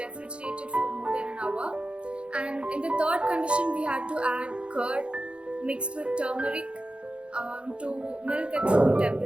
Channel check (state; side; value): late; left; 0.058 ms